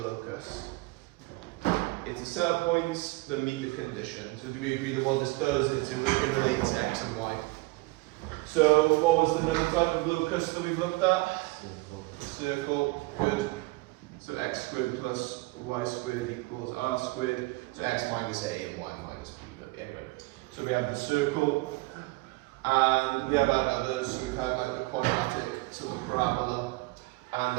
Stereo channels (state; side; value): quieter; left; 22.8 dB